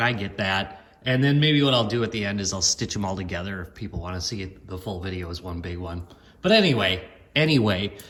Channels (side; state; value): both; identical; correlation 1.00